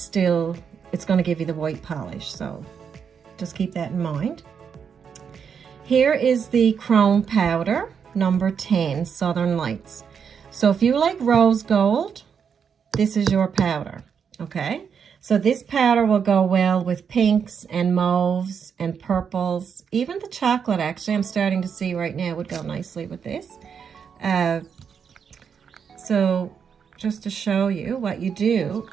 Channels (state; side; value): quieter; left; 6.9 dB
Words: going to give you the white polish. So just keep that in mind. Here is the chrome powder, number 10, Southern Lights. So if you like rose gold, this is your powder. Okay, so this powder will go well with pinks and mauves and purples. Even the chocolate, actually, I'm starting to see right now, would go nicely with this. So just to show you, what you do